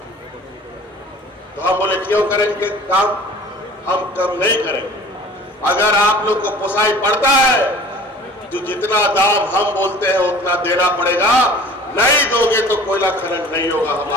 तो हम बोले क्यों करेंगे काम? हम कम नहीं करेंगे। अगर आप लोग को पोसाई पड़ता है तो जितना दाम हम बोलते हैं उतना देना पड़ेगा, नहीं दोगे तो कोयला खनन नहीं होगा।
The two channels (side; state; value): both; normal; correlation 0.45